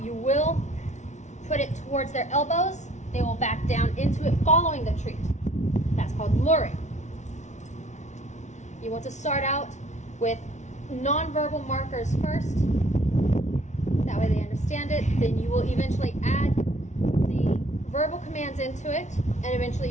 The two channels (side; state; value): right; late; 0.34 ms